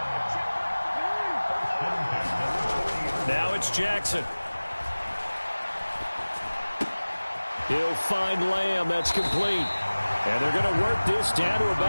Now it's Jackson. He'll find Lamb. That's complete. And they're going to work this down to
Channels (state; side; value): inverted; both; correlation -1.00